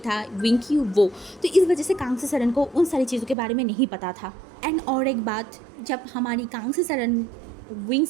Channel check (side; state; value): left; drops out; at 3.4 s